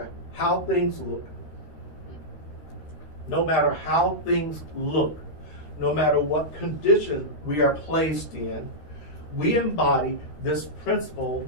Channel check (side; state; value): right; late; 13 ms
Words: how things look, no matter what condition we are placed in, we embody this principle,